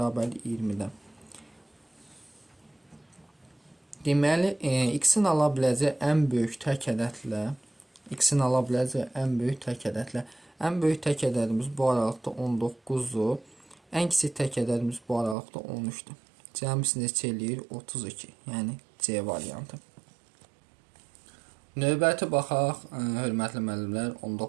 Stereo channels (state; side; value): drops out; left; at 15.4 s